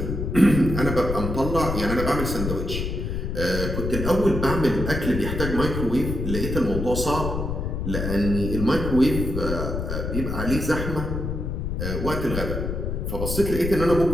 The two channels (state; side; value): noise; left; rumble, 3 dB below the sound